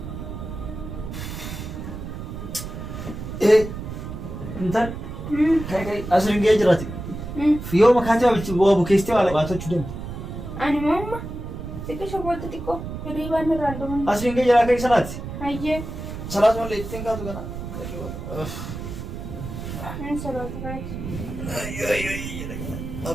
Intal kai asiriin ga'ee jiraati. Yoo makaatee waa bukeessitee waa labaatachuu dandeenya. Ani mamma xiqqishoo booda xiqqoo hirriibaan irraan dhuman. Asiriin ga'ee jiraa kai sanaati. Ayyee. Salaat malee ittiin kaatu kana. Salaata kaati.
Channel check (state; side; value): noise; right; rumble, 8 dB below the sound